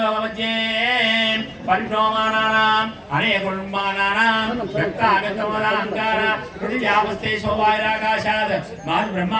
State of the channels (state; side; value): identical; both; correlation 1.00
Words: పరిభ్రమమానానాం అనేకుల్మానానాం వ్యక్తాగతమలాంకార పృథివ్యావస్థే శోభాయిరాకాశాద్ మాది